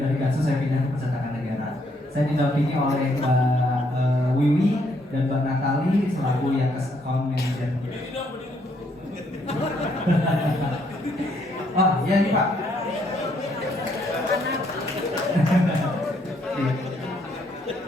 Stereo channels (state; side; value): normal; both; correlation 0.71